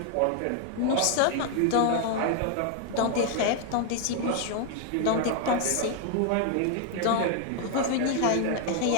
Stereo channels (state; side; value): different; both; correlation 0.00